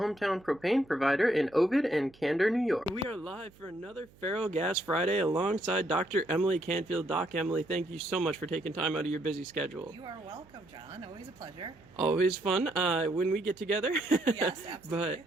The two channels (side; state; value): right; noise; hum, 27 dB below the sound